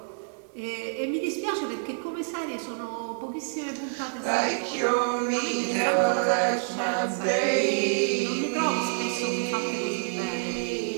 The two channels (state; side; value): silent; left; digital silence